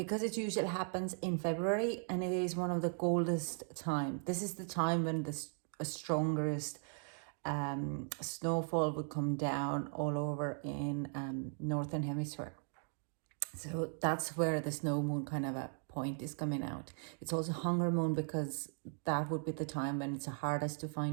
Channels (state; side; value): silent; left; 52 dB below the other